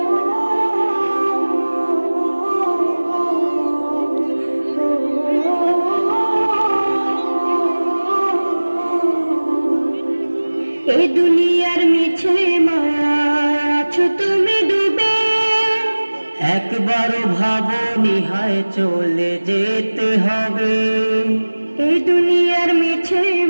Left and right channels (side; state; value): both; inverted; correlation -1.00